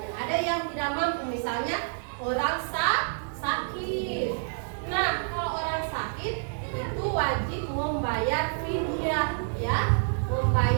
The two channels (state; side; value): silent; left; digital silence